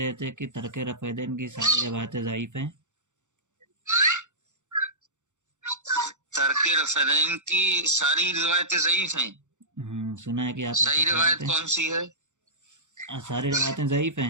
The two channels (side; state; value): left; late; 0.85 ms